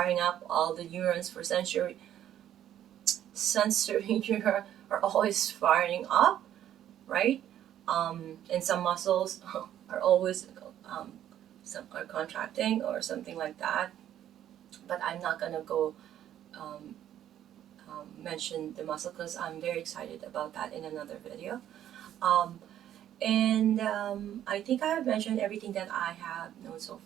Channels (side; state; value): left; quieter; 11.2 dB